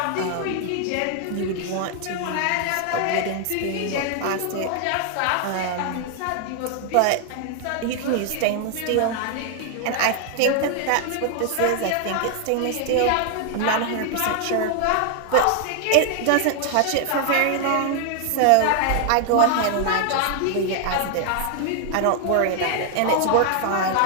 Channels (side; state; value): both; different; correlation 0.00